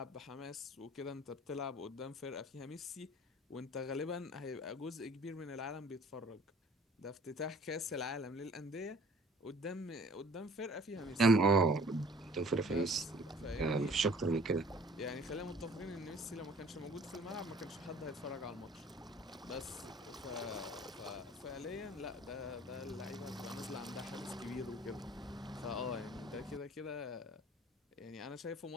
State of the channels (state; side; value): normal; both; correlation 0.51